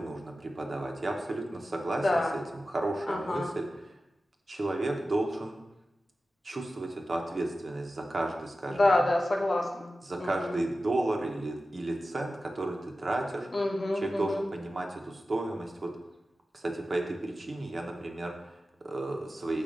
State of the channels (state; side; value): normal; both; correlation 0.94